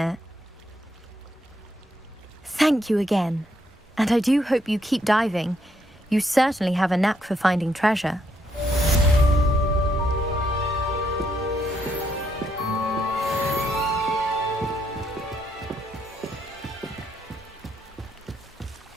Thank you again. And I do hope you keep diving. You certainly have a knack for finding treasure.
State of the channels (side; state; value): both; normal; correlation 0.75